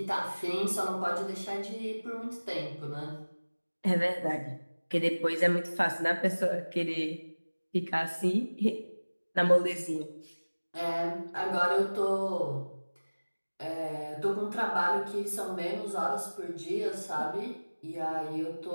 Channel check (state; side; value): inverted; both; correlation -1.00